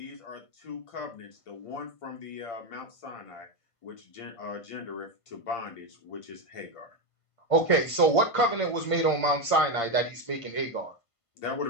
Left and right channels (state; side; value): late; right; 1.5 ms